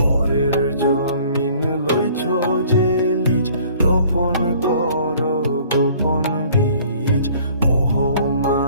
পরের জমিন লইছ যে লিজ, রোপণ করো গোপন বীজ। মোহ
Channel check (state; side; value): inverted; both; correlation -0.54